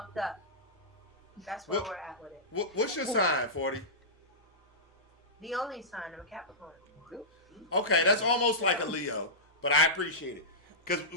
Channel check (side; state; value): both; normal; correlation -0.15